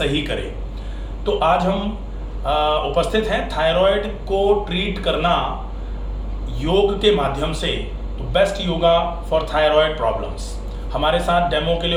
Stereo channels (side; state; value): both; identical; correlation 1.00